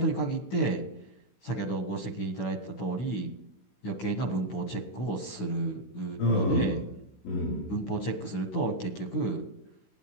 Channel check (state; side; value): late; right; 16 ms